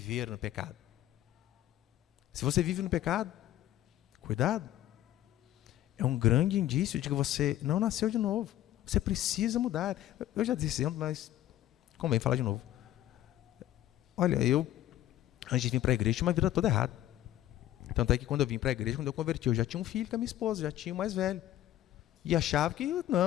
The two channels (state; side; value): quieter; right; 13.4 dB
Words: no pecado. Se você vive no pecado, cuidado. É um grande indício de que você não nasceu de novo. Você precisa mudar. Eu já disse isso, mas convém falar de novo. Olha, eu, antes de vir para a igreja, tinha uma vida toda errada. Tanto é que quando eu vim para a igreja, quando eu converti, eu já tinha um filho com a minha esposa, já tinha o mais velho. E achava que,